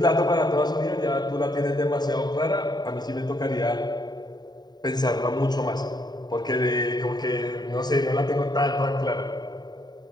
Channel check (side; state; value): right; late; 0.20 ms